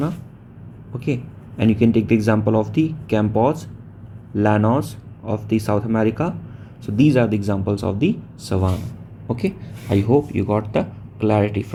okay, and you can take the example of the Campos, Llanos of the South America. So these are the examples of the savanna, okay. I hope you got the clarity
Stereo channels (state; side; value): identical; both; correlation 1.00